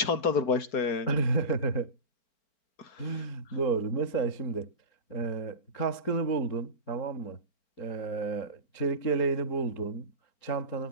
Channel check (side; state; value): right; late; 4.4 ms